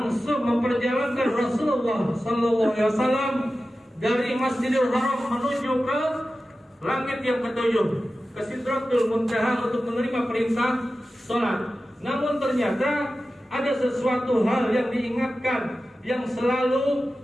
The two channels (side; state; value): both; normal; correlation 0.94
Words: memperjalankan Rasulullah SAW dari Masjidil Haram menuju ke langit yang ketujuh, ke Sidratul Muntaha untuk menerima perintah sholat. Namun ternyata ada sesuatu hal yang diingatkan, yang selalu